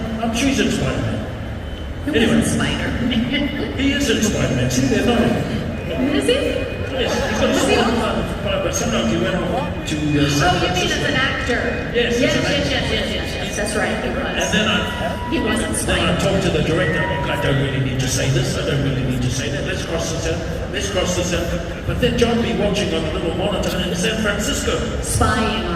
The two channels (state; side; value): identical; both; correlation 1.00